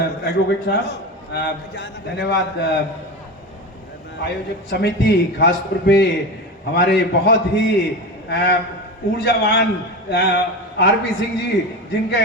एडवोकेट साहब, धन्यवाद आयोजक समिति, खासतौर पे हमारे बहुत ही ऊर्जावान आरपी सिंह जी,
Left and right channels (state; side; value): normal; both; correlation 0.24